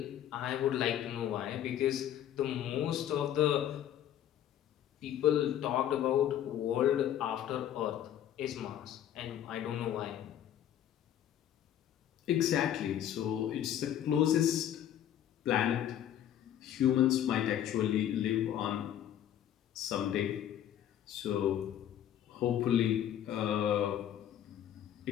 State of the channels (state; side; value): quieter; right; 10.8 dB